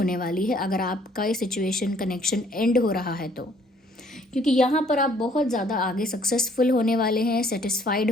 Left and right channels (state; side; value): normal; both; correlation 0.61